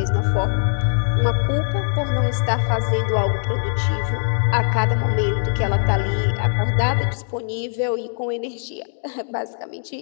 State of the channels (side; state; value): right; silent; digital silence